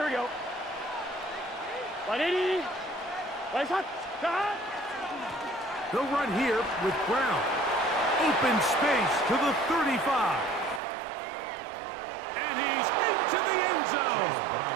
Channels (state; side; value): drops out; left; at 10.8 s